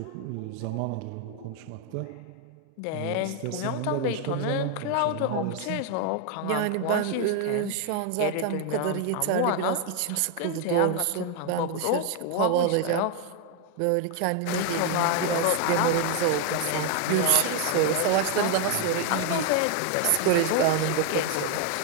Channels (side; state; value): both; different; correlation 0.01